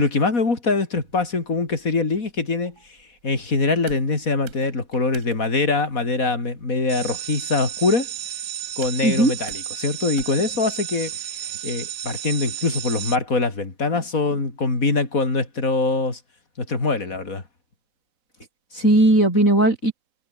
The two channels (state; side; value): late; right; 4.1 ms